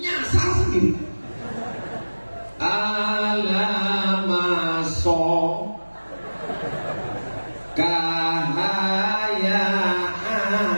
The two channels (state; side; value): inverted; both; correlation -1.00